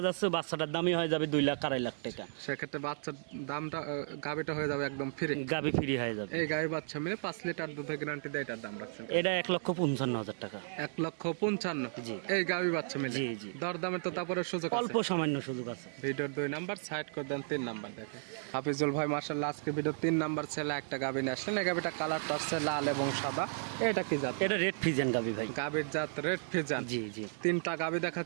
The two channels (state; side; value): silent; left; digital silence